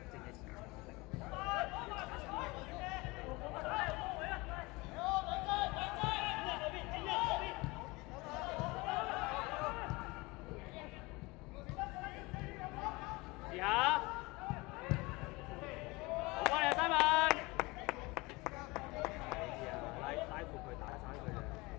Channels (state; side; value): quieter; right; 23.8 dB